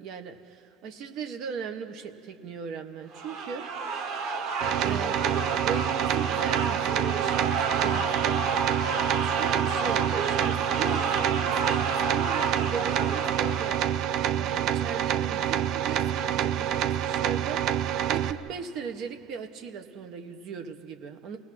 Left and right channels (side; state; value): left; quieter; 7.9 dB